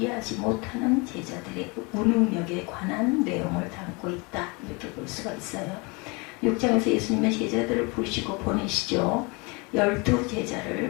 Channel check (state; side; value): quieter; right; 28.6 dB